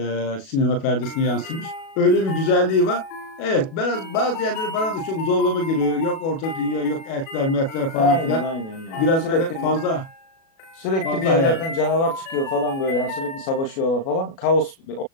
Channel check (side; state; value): right; late; 37 ms